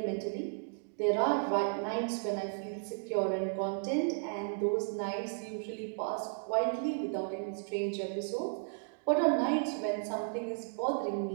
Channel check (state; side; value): silent; left; digital silence